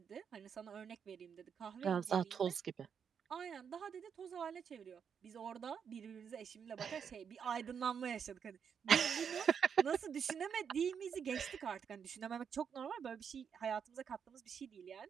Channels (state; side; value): quieter; left; 7.2 dB